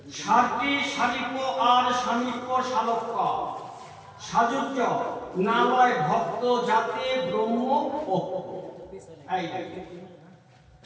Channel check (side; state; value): both; identical; correlation 1.00